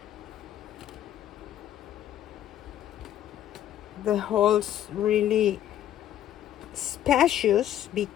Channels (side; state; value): right; quieter; 11.6 dB